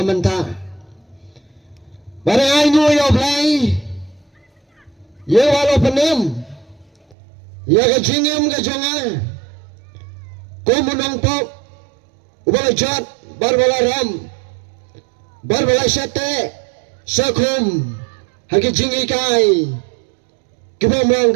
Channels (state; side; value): drops out; left; at 7.2 s